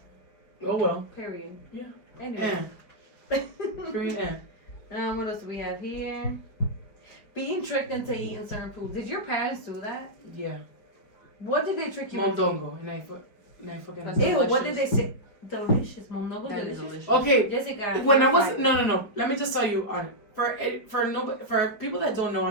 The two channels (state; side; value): late; right; 5.1 ms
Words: Oh well. Period. Yeah. Anyway. Green What else do we have here? Being tricked into eating certain foods. Did your parents do that? Yeah. What did they trick you into? Mondongo. And I fucking. That's Ew, what delicious. did they say? Delicious. Mondongo That is delicious. delicious. Okay. Jessica. When I you're was fine. no. Let me just tell you on for people that don't know,